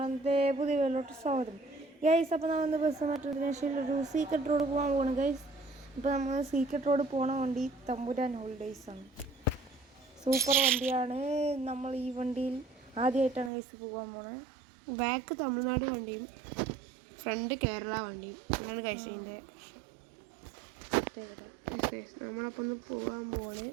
പുതിയ വീട്ടിലോട്ട് സ്വാഗതം. ഗൈസ്, അപ്പോൾ നമ്മൾ ബസ് മെട്രോദേശയിൽ ഒരു സീക്രട്ട് റോഡ് പോകാൻ പോകണം ഗൈസ്. ഇപ്പോൾ നമ്മൾ സീക്രട്ട് റോഡ് പോകണ വണ്ടി തമ്പുരാൻ ഹോളിഡേയ്സ് ആണ്. സൂപ്പർ വണ്ടിയാണ്. നമ്മൾ ഈ വണ്ടിയിൽ ആദ്യമായിട്ടാണ് ഗൈസ് പോകാൻ പോണത്. ബാക്ക് തമിഴ്നാട് വണ്ടിയും ഫ്രണ്ട് കേരള വണ്ടിയും അങ്ങനെ കഴിച്ചതിൻ്റെ നമ്മളപ്പോൾ ഒന്ന് പോകാൻ പോണ്.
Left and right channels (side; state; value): left; drops out; at 13.5 s